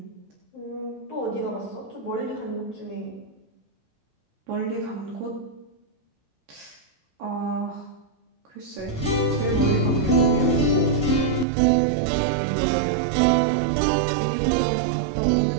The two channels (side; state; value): left; drops out; at 11.5 s